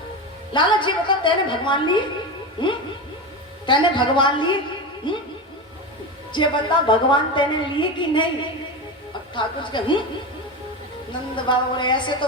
लाला जी बता, तेने भगवान लिए? तेने भगवान लिए? ये बता, भगवान तेने लिए कि नहीं? अब ठाकुर जी नंद बाबा बोले ऐसे तो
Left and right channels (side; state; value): both; normal; correlation 0.21